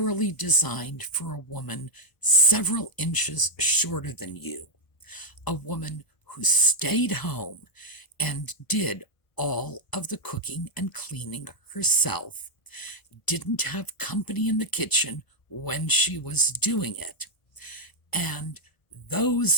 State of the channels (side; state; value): right; late; 1.0 ms